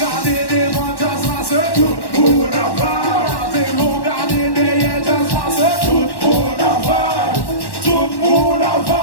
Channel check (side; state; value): right; late; 1.1 ms